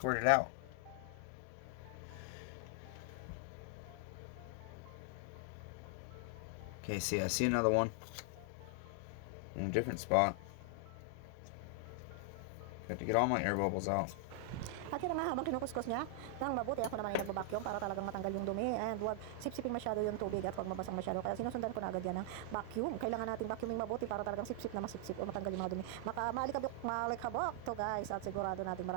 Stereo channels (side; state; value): both; different; correlation 0.00